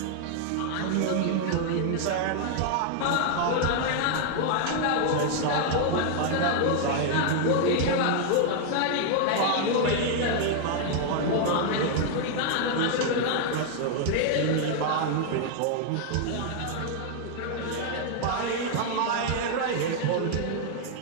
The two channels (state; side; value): different; both; correlation 0.00